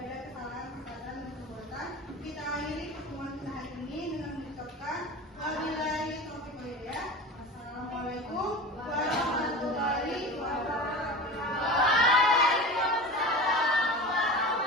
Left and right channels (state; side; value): normal; both; correlation 0.31